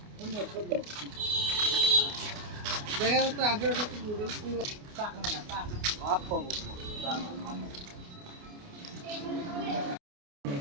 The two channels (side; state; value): left; late; 28 ms